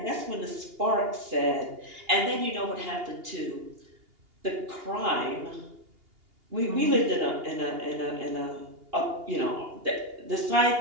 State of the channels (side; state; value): left; late; 2.8 ms